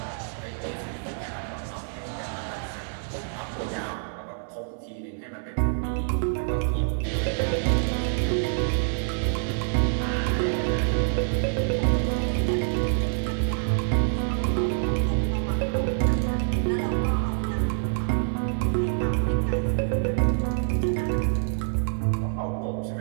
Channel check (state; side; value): silent; left; 61 dB below the other